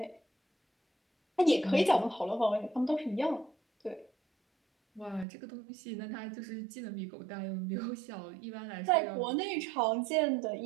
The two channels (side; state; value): left; drops out; at 5.2 s